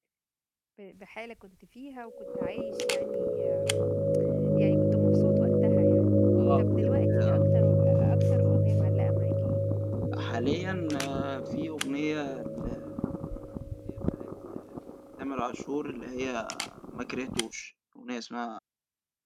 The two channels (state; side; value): identical; both; correlation 1.00